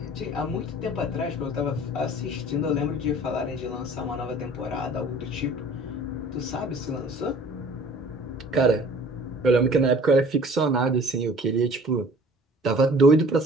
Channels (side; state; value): both; normal; correlation 0.49